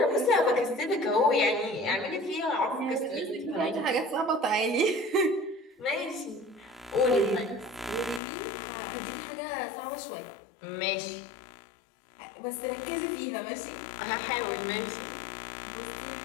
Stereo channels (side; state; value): right; drops out; at 8.2 s